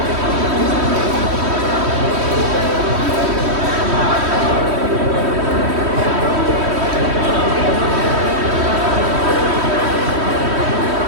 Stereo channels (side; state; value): left; late; 3.1 ms